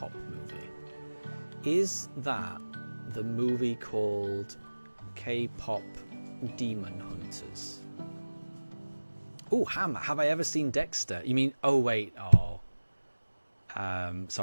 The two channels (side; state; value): both; inverted; correlation -1.00